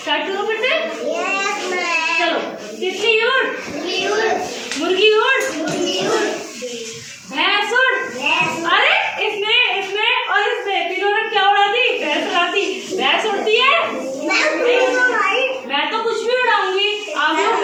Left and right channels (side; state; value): both; identical; correlation 1.00